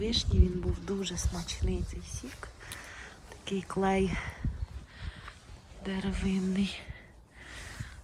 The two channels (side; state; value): both; identical; correlation 1.00